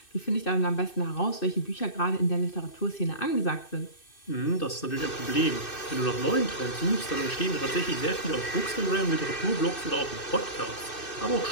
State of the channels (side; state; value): right; late; 2.6 ms